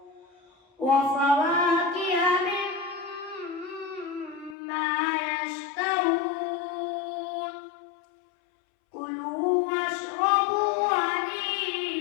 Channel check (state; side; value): drops out; right; at 4.5 s